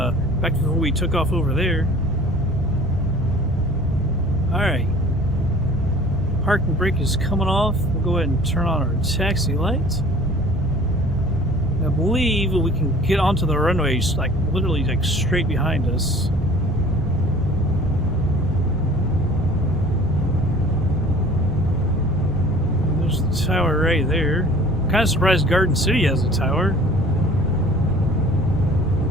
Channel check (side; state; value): both; normal; correlation 0.48